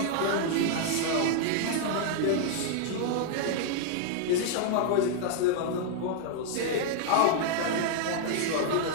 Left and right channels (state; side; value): different; both; correlation -0.01